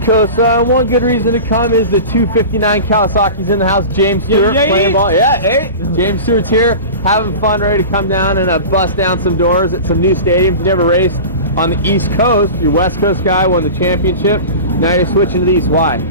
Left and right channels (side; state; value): both; inverted; correlation -0.33